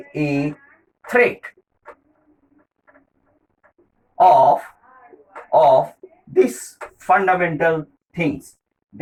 a threat of of these fundamental things,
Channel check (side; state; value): both; identical; correlation 1.00